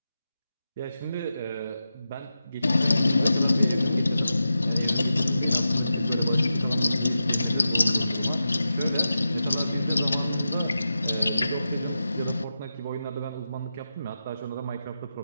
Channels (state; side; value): inverted; both; correlation -0.91